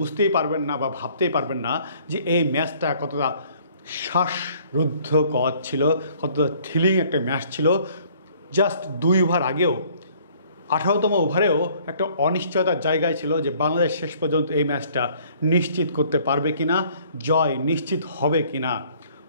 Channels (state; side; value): inverted; both; correlation -0.58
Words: পারবেন না বা ভাবতেই পারবেন না যে এই ম্যাচটা কতটা শ্বাসরুদ্ধকর ছিল, কতটা থ্রিলিং একটা ম্যাচ ছিল। জাস্ট 2 ওভার আগেও 18তম ওভারেও একটা অনিশ্চয়তার জায়গায় ছিল যে বাংলাদেশ শেষ পর্যন্ত এই ম্যাচটা নিশ্চিত করতে পারবে কিনা, জয় নিশ্চিত হবে কিনা।